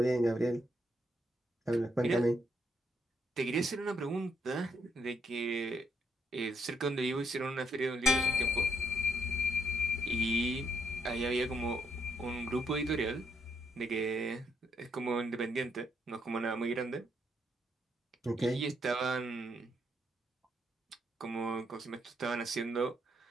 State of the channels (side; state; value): both; normal; correlation 0.75